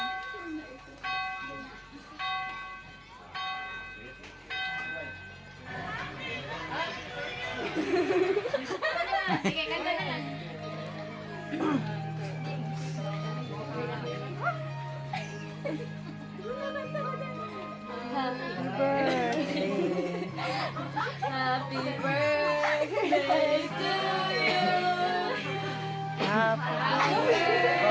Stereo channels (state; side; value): identical; both; correlation 1.00